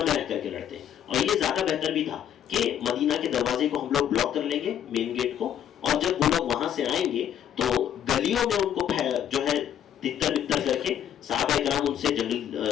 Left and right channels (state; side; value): quieter; right; 10.0 dB